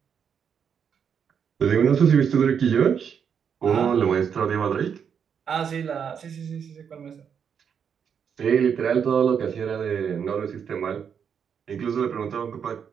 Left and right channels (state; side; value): quieter; left; 7.3 dB